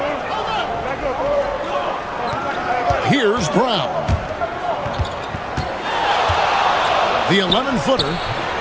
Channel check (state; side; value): identical; both; correlation 1.00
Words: Here's Brown. The 11-footer